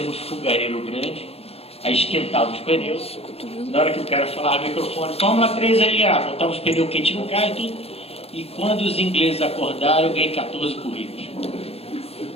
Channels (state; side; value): late; right; 0.29 ms